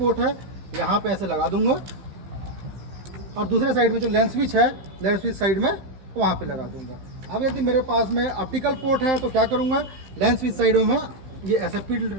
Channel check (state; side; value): late; left; 15 ms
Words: है यहाँ पे ऐसे लगा दूंगा, और दूसरे साइड में जो लेंस स्विच है, लेंस स्विच साइड में वहाँ पे लगा दूंगा। अब यदि मेरे पास में ऑप्टिकल पोर्ट है तो क्या करूँगा, लेंस स्विच साइड में मैं ये SFP